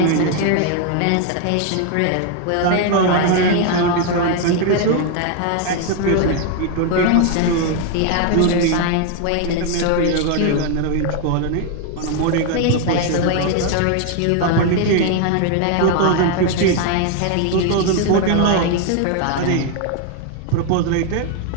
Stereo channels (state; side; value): different; both; correlation 0.01